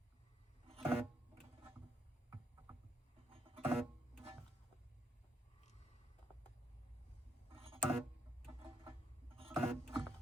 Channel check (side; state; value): both; normal; correlation 0.74